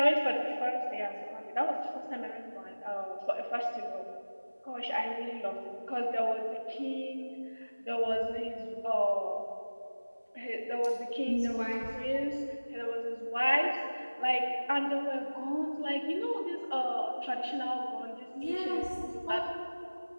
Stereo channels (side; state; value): both; inverted; correlation -1.00